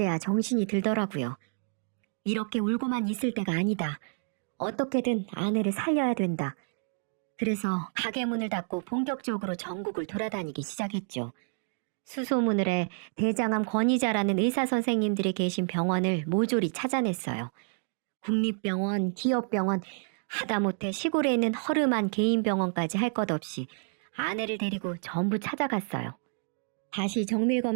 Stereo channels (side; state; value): left; silent; 57 dB below the other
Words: 정신이 들더라고요. 이렇게 울고만 있을 때가 아니다. 어떻게든 아내를 살려야 된다. 그래서 가게 문을 닫고 본격적으로 전국을 돌아다니기 시작했죠. 수소문을 대장암 권위자라는 의사 선생님들이 계신 병원을 모조리 찾아냈어요. 국립병원, 기업병원, 하다못해 시골에 있는 허름한 개인 병원까지 할 것 없이 아내를 데리고 전부 찾아갔어요. 다시 정밀